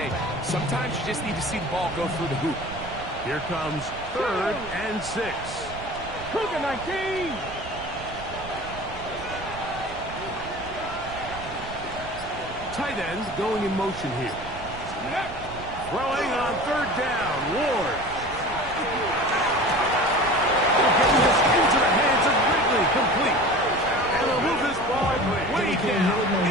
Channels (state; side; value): noise; right; rumble, 13 dB below the sound